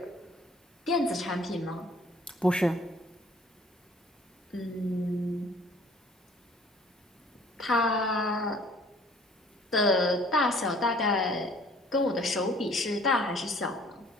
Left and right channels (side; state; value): both; normal; correlation 0.55